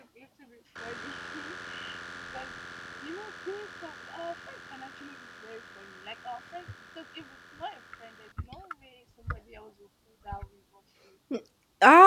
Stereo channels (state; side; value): identical; both; correlation 1.00